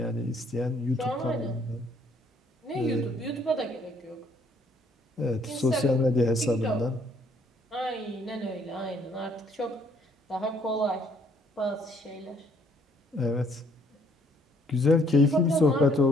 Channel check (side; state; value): both; normal; correlation 0.65